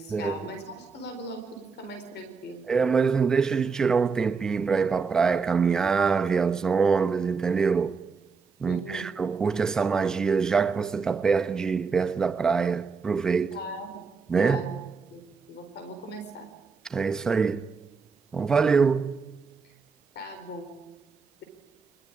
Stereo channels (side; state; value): left; quieter; 5.1 dB